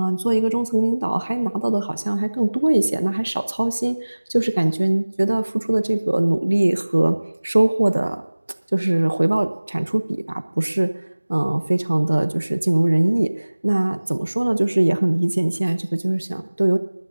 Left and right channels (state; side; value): inverted; both; correlation -1.00